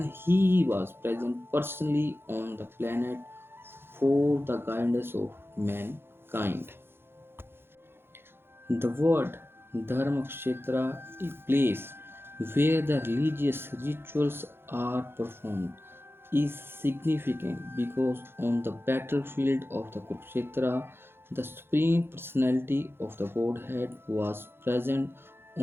he was present personally on the planet for the guidance of mankind. The word Dharmakshetra, a place where the religious rituals are performed, is significant because on the battlefield of the Kurukshetra, the Supreme Personality of the Godhead was present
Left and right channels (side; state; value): left; late; 0.11 ms